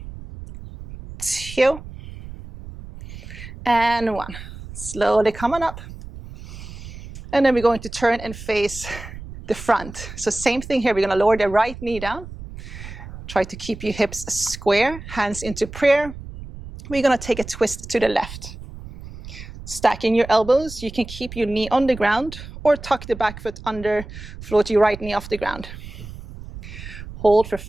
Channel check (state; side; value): noise; right; rumble, 13 dB below the sound